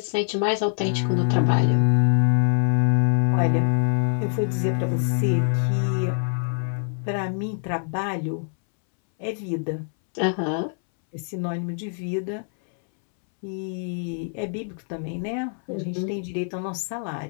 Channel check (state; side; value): silent; right; 62 dB below the other